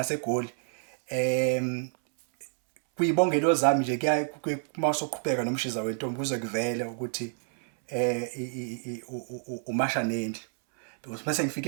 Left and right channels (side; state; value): left; silent; 59 dB below the other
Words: kuyibongelo zami nje kuya mawusoqhubeka nomshiza wentombi kuze kuvele ukuthi umasha nendlu because mase ngifike